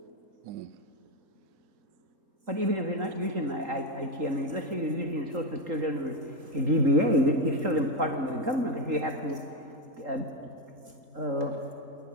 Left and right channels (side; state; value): left; late; 3.8 ms